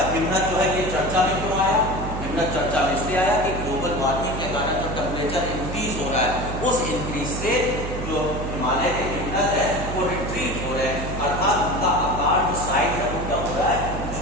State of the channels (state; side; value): noise; right; hum, 5 dB below the sound